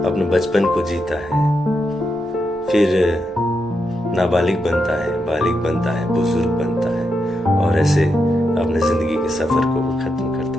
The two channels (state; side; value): normal; both; correlation 0.84